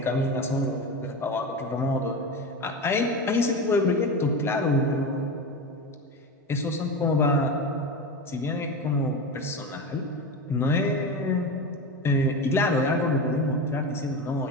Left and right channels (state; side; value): normal; both; correlation 0.23